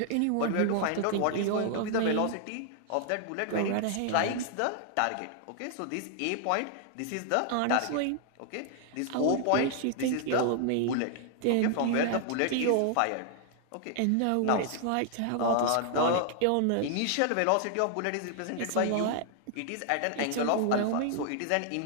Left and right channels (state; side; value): different; both; correlation 0.00